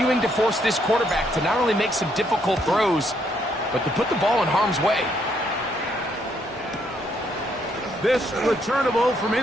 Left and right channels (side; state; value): both; normal; correlation 0.72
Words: to force this quarterback to not only make some difficult throws, but to put the ball in harm's way. This returnable from